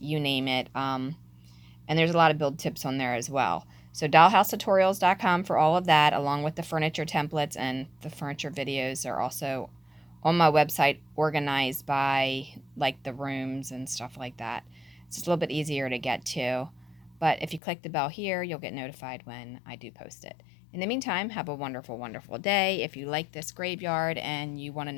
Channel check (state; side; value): drops out; right; at 17.6 s